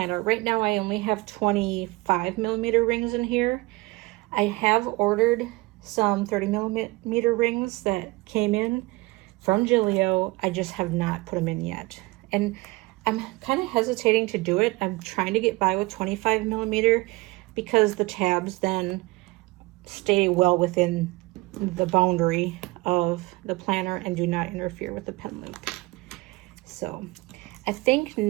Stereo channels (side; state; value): left; quieter; 22.9 dB